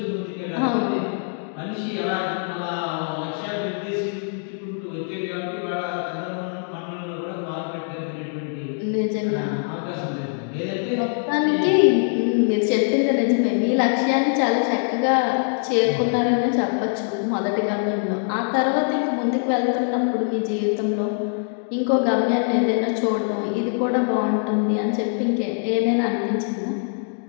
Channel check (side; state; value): right; silent; 63 dB below the other